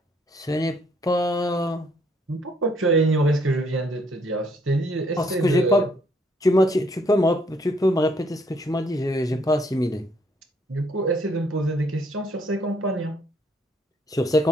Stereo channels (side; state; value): both; normal; correlation 0.67